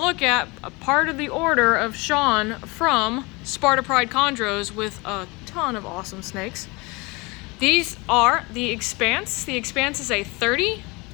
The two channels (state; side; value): quieter; right; 26.0 dB